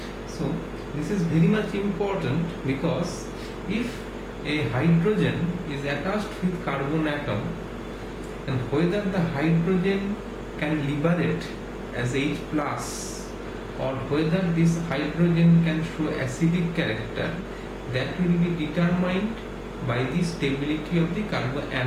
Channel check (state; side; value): identical; both; correlation 1.00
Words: So this is very much important because if a hydrogen is attached with carbon atom, and whether the hydrogen can liberate as H plus or whether this hydrogen can show acidic character, that will be determined by the stability of the